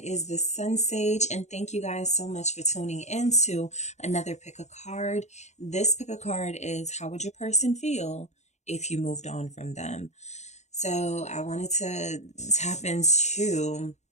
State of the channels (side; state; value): right; late; 0.33 ms